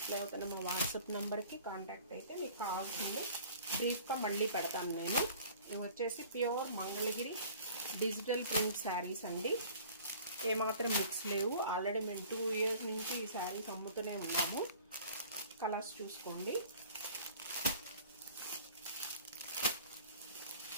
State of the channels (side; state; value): both; inverted; correlation -0.47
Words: అవుతున్న మా వాట్సాప్ నెంబర్కి కాంటాక్ట్ అయితే మీకు కావాల్సింది బ్రీఫ్గా మళ్ళీ పెడతాను నేను. ఇవి వచ్చేసి pure Mangalagiri digital print saris అండి. ఏమాత్రం మిక్స్ లేవు. ఆల్రెడీ మేము 2 years నుంచి ఈ శారీస్ అమ్ముతూనే ఉన్నాము. కలర్స్ చూసుకోండి.